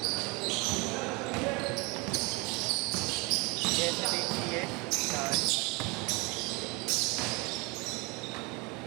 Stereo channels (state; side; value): quieter; left; 27.7 dB